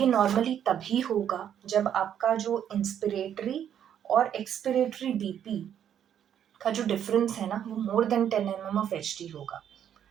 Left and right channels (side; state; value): left; quieter; 9.5 dB